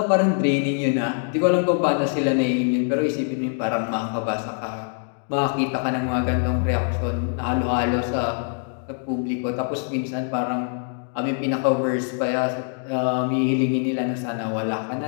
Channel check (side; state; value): right; silent; 63 dB below the other